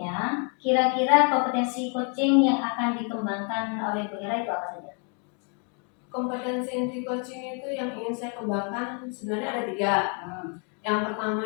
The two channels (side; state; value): right; quieter; 39.1 dB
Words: kira-kira kompetensi coaching yang akan dikembangkan oleh Bu Hera itu apa saja? Kompetensi inti coaching itu yang ingin saya kembangkan sebenarnya ada 3. Yang pertama